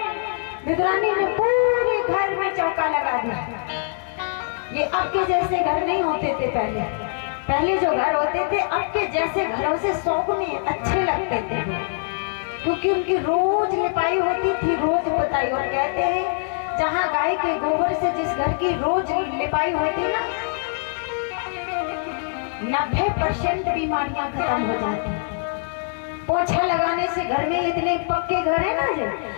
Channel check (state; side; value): silent; right; digital silence